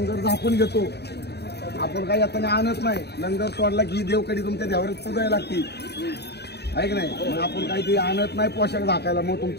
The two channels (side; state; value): right; late; 0.48 ms